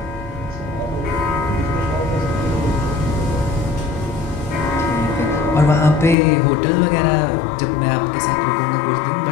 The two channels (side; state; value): right; drops out; at 6.2 s